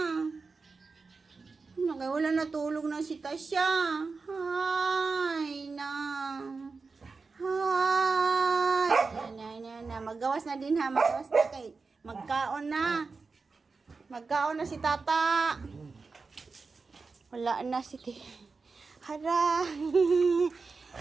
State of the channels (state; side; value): quieter; left; 4.4 dB